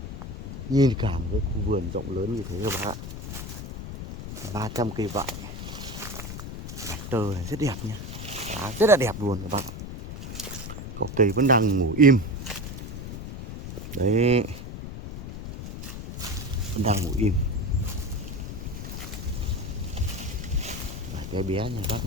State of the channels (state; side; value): noise; left; rumble, 8 dB below the sound